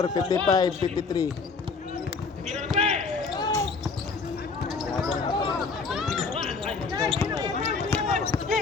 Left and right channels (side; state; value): right; quieter; 4.7 dB